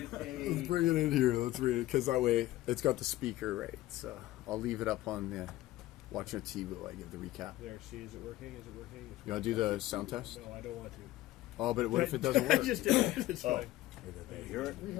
a... Let's bring it in here. Let's read it because that way it's got the speaker right. So I'll leave it up on the watching TV while I give the recap. There, see, is it working? Is it working? You want to do the sound test? No, I don't want to. Oh, but what if it doesn't work? Just did it. It's fine. You hear it?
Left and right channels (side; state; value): right; quieter; 16.1 dB